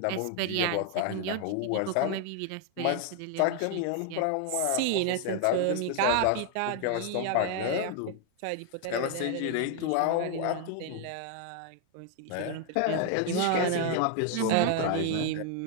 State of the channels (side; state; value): both; different; correlation 0.00